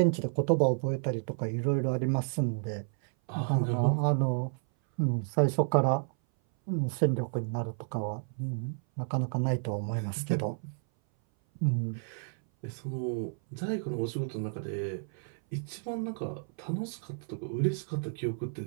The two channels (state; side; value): silent; left; 57 dB below the other